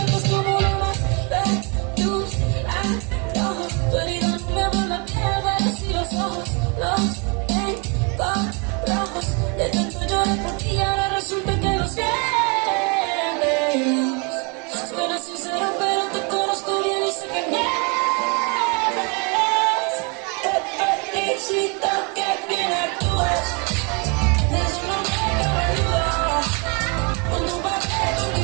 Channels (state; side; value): quieter; left; 33.0 dB